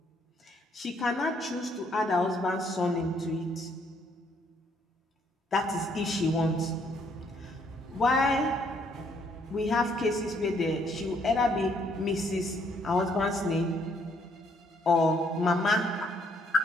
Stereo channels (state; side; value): normal; both; correlation 0.68